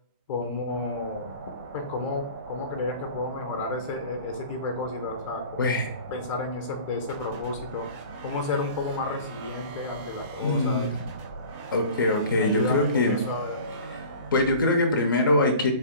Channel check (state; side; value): inverted; both; correlation -0.42